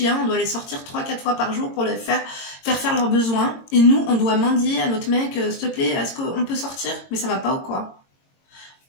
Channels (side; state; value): right; late; 22 ms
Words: on doit les sortir 3-4 fois par jour pour les faire leurs besoins. Et nous, on doit mendier à notre mec « s'il te plaît, est-ce qu'on peut sortir ?» Mais ça va pas ou quoi?